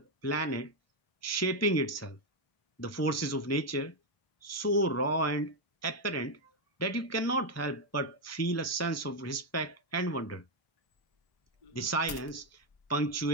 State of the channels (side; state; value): right; late; 1.3 ms